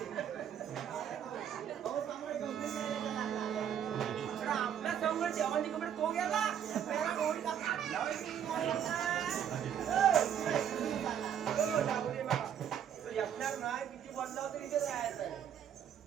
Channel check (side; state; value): left; quieter; 9.1 dB